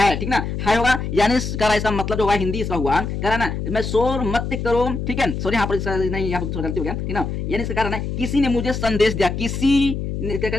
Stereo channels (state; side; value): noise; left; hum, 4 dB below the sound